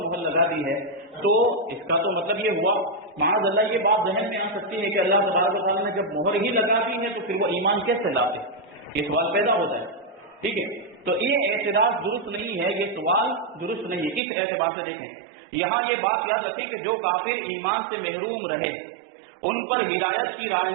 مہر لگا دی ہے، تو اس کا تو مطلب یہ ہوا معاذ اللہ یہ بات ذہن میں آ سکتی ہے کہ اللہ تبارک و تعالیٰ نے جب مہر ہی لگا دی ہے تو پھر وہ ایمان کیسے لاتے، یہ سوال پیدا ہوتا ہے۔ ٹھیک ہے، تو یہ اعتراض درست نہیں ہے، یہ سوال درست نہیں ہے۔ کس اعتبار سے دیکھیں، یہاں یہ بات یاد رکھیں کہ جو کافر ایمان سے محروم رہے ان پر ہدایت کی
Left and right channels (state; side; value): drops out; left; at 14.2 s